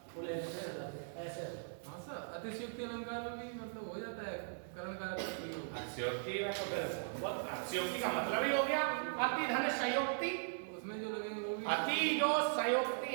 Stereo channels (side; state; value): left; silent; digital silence